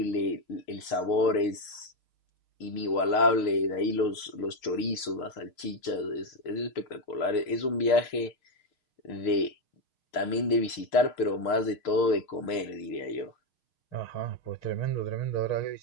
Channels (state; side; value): late; right; 6.5 ms